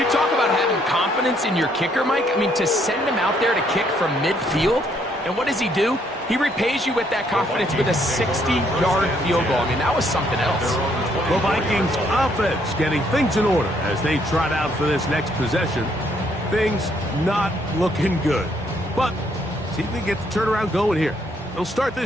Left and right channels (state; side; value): normal; both; correlation 0.69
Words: talk about having confidence in your kicker, Mike. I mean, to send him out there to kick from midfield, and what does he do? He repays you with that confidence with a 60-yard field goal. I mean, that was something else. The Vikings offense getting things in order as they trot out for this next possession. Things not looking good. But see if they get the turnaround going here. They'll start